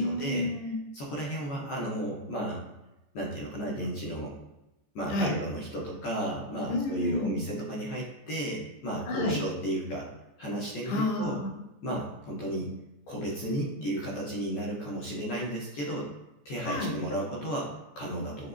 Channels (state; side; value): late; right; 14 ms